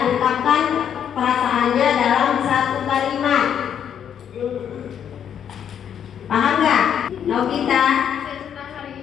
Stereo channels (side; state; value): right; quieter; 8.8 dB